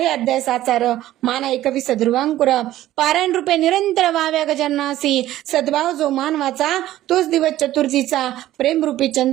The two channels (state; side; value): quieter; left; 14.2 dB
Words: अध्याय साचार, माना 21 ध्रुवांकुर. पारायण रूपे निरंतर व्हाव्या गजाननासी. सद्भाव जो मानवाचा तोच दिवस चतुर्थीचा. प्रेमरूपी